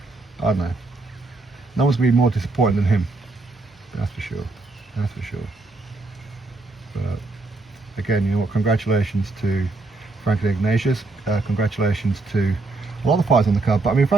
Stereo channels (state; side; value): quieter; left; 3.3 dB